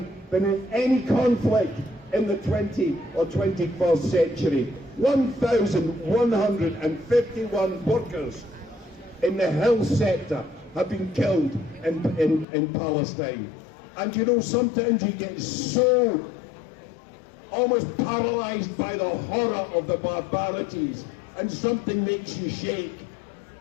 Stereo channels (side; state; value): right; drops out; at 12.5 s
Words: than in any conflict in the 20th or 21st century. 1,151 workers in the health sector have been killed in Palestine. And you know, sometimes you get so almost paralysed by the horror of the barbarities, and something makes you shake.